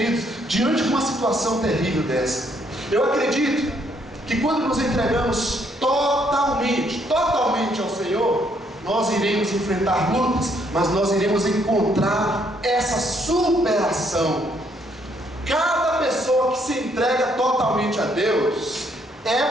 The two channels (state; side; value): normal; both; correlation 0.70